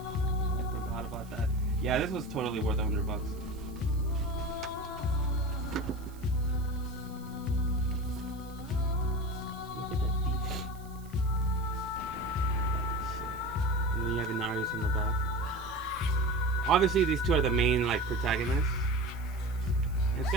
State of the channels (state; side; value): noise; right; hiss, 24 dB below the sound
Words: I forgot about that. Yeah, this was totally worth $100. Look at that detail. That looks sick. And then you have Inarius in the back. Obviously, these two are the main like protagonists. And it's